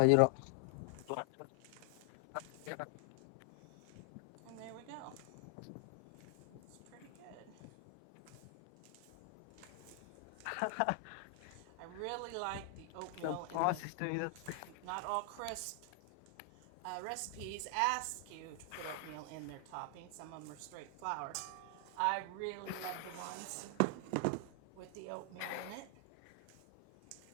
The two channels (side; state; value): both; different; correlation 0.00